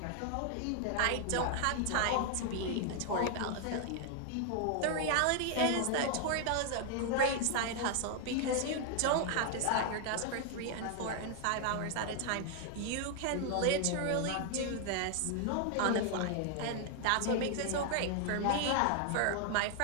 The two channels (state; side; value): different; both; correlation 0.00